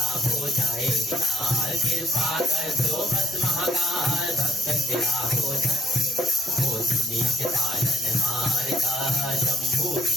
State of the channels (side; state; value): both; normal; correlation 0.64